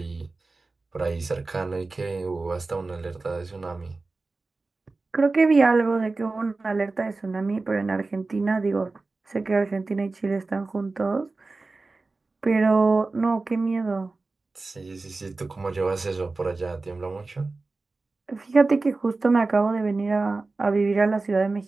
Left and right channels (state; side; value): quieter; left; 3.6 dB